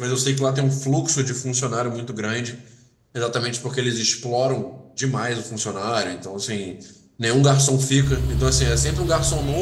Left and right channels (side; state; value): both; identical; correlation 1.00